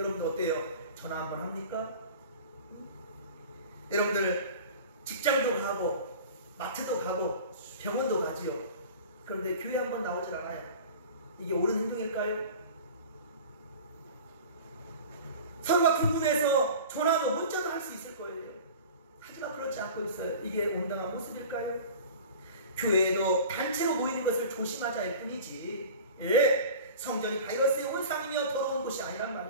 어때요? 전화 한번 합니까? 여러분들 직장도 가고 마트도 가고 병원도 가지요. 그런데 교회 한번 나오질 않아요. 이게 옳은 행동일까요? 서로가 궁금해서 전화도 문자도 할 수 있을 거예요. 하지만 그렇지 않고 있어요. 이게 온당한 모습일까요? 교회에도 단체로 모이는 것을 조심하자 할 뿐이지, 예, 성전이 바이러스의 온상이며 더러운 곳이 아니란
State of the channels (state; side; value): inverted; both; correlation -0.38